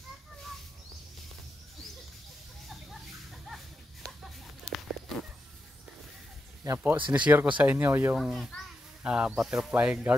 Yan po, sinishare ko sa inyo yung butterfly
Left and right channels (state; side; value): normal; both; correlation 0.87